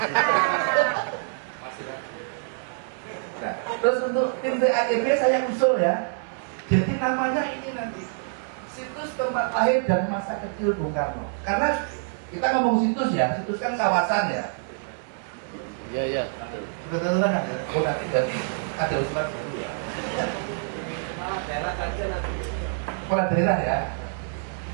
Masih ragu. Nah, terus untuk tim TAEB saya usul ya. Jadi namanya ini nanti situs tempat lahir dan masa kecil Bung Karno. Karena kita ngomong situs ya, situs kan kawasan ya. Iya, iya. Betul kan ada. Oh nanti berarti ada usulan dulu ya. Kepala daerah saja nanti. Kepala daerah ya.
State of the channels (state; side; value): silent; left; digital silence